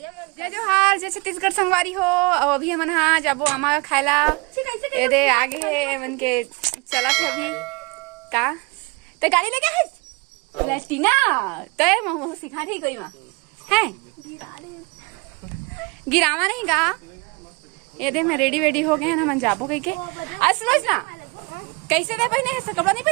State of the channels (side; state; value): left; quieter; 28.4 dB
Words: जोहार जय छत्तीसगढ़ संगवारी हो। और अभी हमन हाँ जाबो आमा खायला ए दे आगे मन के चला था अभी का ते गाड़ी लेके है लेटीना तय मोह सिखा थी कोई मां है गिरावा नहीं गा ये दे मैं रेडी वेडी हो गए हैं ना मन जाबो कहीं के असलोच ना कैसे दे पहने ऐसा कपड़ा नहीं